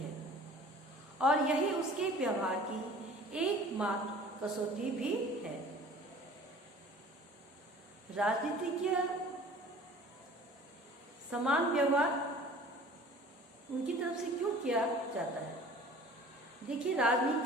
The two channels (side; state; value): both; normal; correlation 0.46